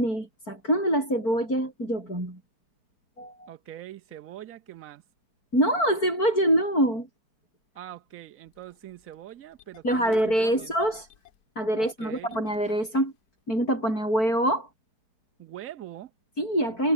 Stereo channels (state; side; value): late; right; 4.5 ms